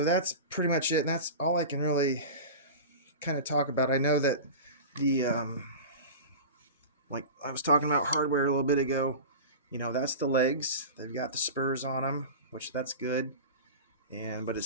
that's pretty much it, and that's all I can really kind of talk about. I know that the like I was talking about hardware a little bit ago. That's the legs. They've got the spurs on them, which that's good. But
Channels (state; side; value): inverted; both; correlation -0.30